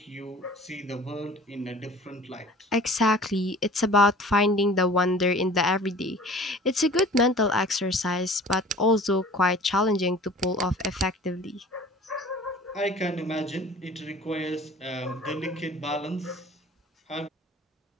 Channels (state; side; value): normal; both; correlation 0.45